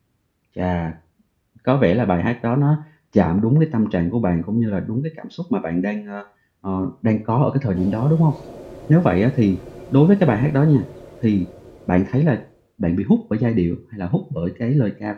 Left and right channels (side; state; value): both; identical; correlation 1.00